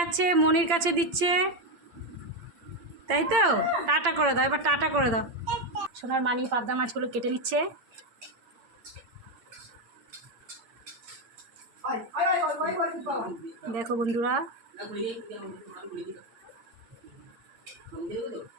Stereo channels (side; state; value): left; late; 8.6 ms